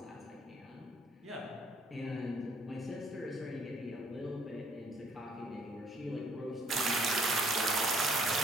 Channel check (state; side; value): normal; both; correlation 0.62